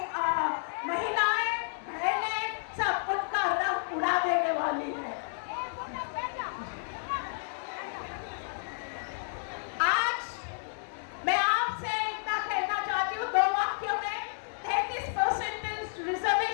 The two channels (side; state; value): right; silent; digital silence